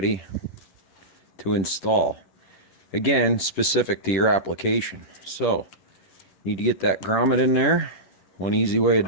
to install. Again, specific to your application. So, need to get that grommet in there. One easy way of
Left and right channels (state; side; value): late; right; 10 ms